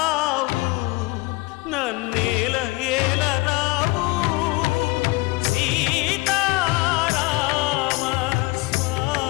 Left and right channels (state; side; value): quieter; right; 23.4 dB